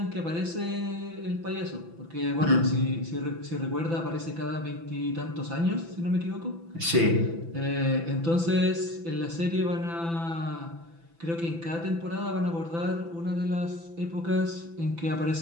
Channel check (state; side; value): late; left; 6.0 ms